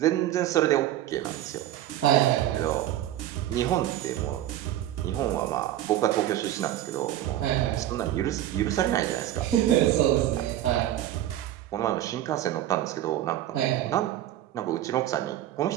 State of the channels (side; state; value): left; quieter; 12.9 dB